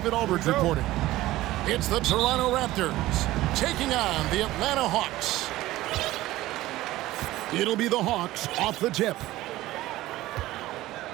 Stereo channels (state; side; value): quieter; left; 16.6 dB